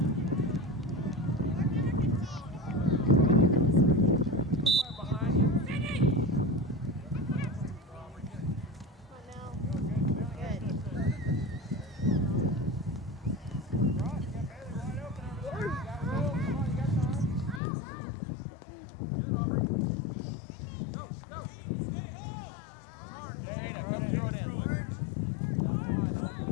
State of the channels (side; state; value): right; drops out; at 17.6 s